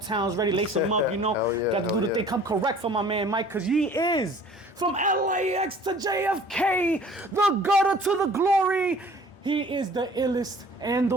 ready, lace them up, you know. Hell yeah, got to do the thing. Come correct for my man Mike, cause he is from LAX to JFK, the gutter to the glory. He is the illest and the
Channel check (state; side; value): normal; both; correlation 0.49